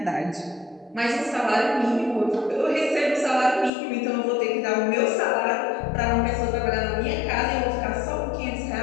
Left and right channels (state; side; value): drops out; right; at 3.7 s